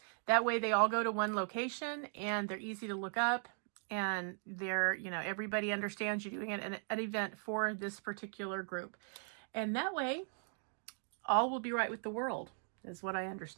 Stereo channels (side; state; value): left; silent; 52 dB below the other